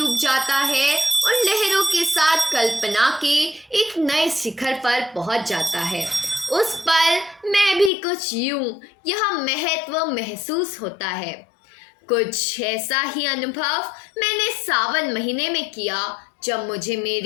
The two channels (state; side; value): drops out; right; at 7.9 s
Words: जाता है और लहरों के साथ कल्पना के एक नए शिखर पर पहुंच जाता है। उस पर मैं भी कुछ यूं यह महत्व महसूस होता है। कुछ ऐसा ही अनुभव मैंने सावन महीने में किया जब मुझे